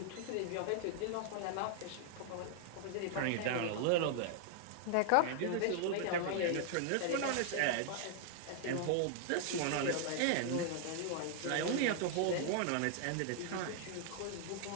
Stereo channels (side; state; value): both; different; correlation -0.01